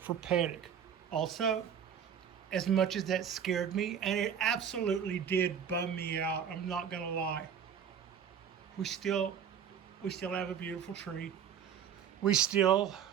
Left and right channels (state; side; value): quieter; left; 8.1 dB